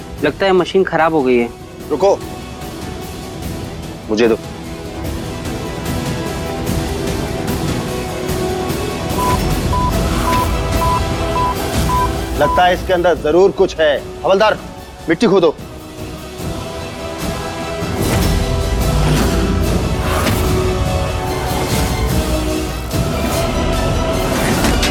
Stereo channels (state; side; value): identical; both; correlation 1.00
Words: लगता है मशीन खराब हो गई है। रुको, मुझे दो। लगता है इसके अंदर जरूर कुछ है। हवलदार, मिट्टी खोदो।